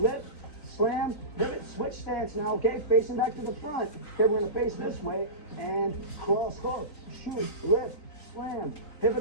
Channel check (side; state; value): right; late; 3.9 ms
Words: slam, pivot. Switch stance now, okay? Facing back to the front. Okay, we're going to face this way and cross hook, shoot, lift, slam,